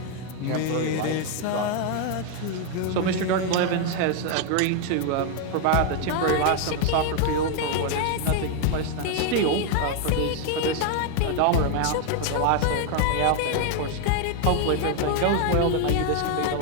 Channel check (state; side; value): different; both; correlation 0.00